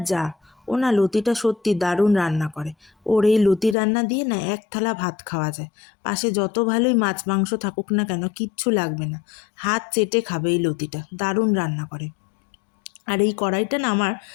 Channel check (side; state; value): right; drops out; at 3.8 s